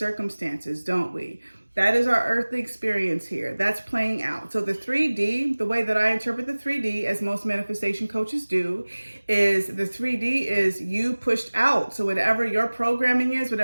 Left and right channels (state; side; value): inverted; both; correlation -1.00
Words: don't we? That is our earthly experience here. That's playing out. So the 3D, the way that I interpret the 3D, as most manifestation coaches do, is the 3D is you pushed out. So whatever your programming is,